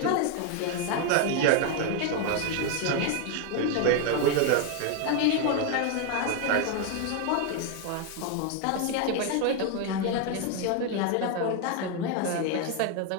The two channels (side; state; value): both; different; correlation 0.01